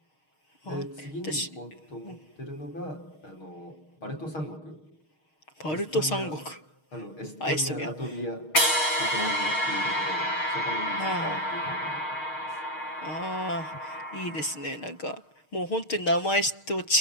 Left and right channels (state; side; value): late; right; 6.5 ms